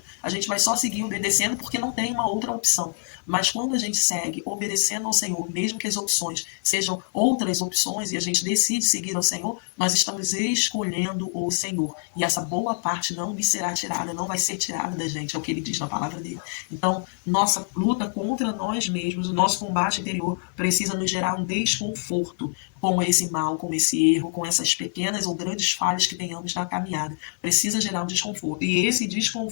A gente vai só seguir obedecendo porque não tem uma outra opção. Mas quando a gente segue obedecendo ao Senhor, mesmo que as opções sejam outras opções e a gente decide seguir ao Senhor, nós estamos escolhendo o Senhor. E essa boa parte não me será tirada, não vai ser tirada da gente, é o que ele diz na palavra dele. Então, nossa luta contra nós mesmos, o nosso combate interior precisa nos gerar um desconforto com esse mal, com esse erro, com essas pequenas ou grandes falhas que tenhamos na caminhada. Precisa gerar um desconforto. E esse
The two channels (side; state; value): right; silent; digital silence